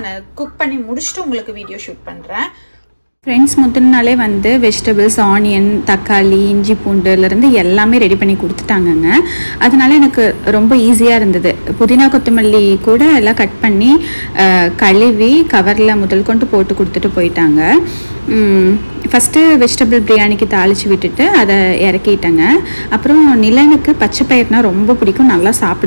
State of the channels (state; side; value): inverted; both; correlation -1.00